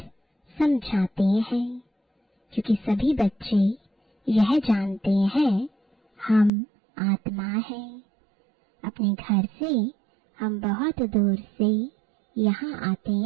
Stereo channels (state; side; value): drops out; left; at 6.5 s